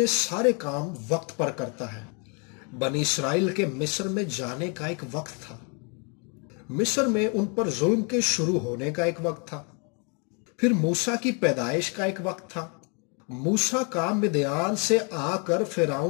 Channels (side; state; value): right; quieter; 35.9 dB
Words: سارے کام وقت پر کرتا ہے۔ بنی اسرائیل کے مصر میں جانے کا ایک وقت تھا۔ مصر میں ان پر ظلم کے شروع ہونے کا ایک وقت تھا۔ پھر موسیٰ کی پیدائش کا ایک وقت تھا۔ موسیٰ کا مدیان سے آ کر